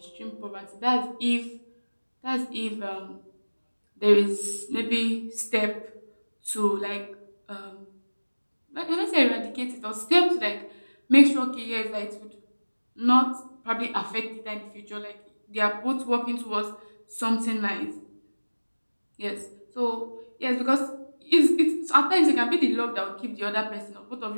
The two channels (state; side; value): inverted; both; correlation -1.00